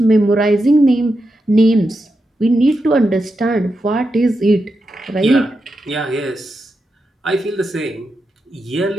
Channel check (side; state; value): both; normal; correlation 0.87